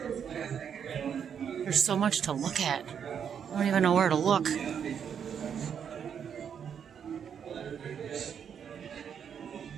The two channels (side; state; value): left; quieter; 7.8 dB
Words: There's so much to look at. I don't even know where to look.